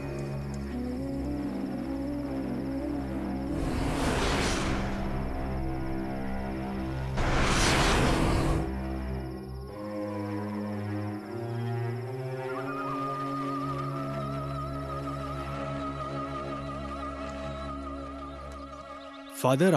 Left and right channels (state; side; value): identical; both; correlation 1.00